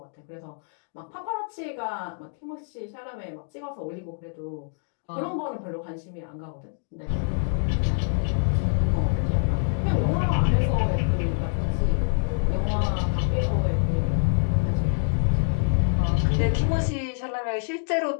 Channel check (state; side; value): silent; right; digital silence